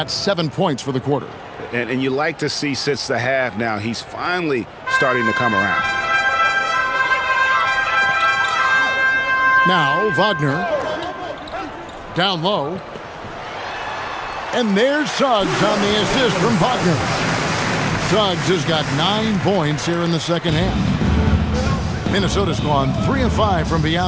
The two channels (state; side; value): identical; both; correlation 1.00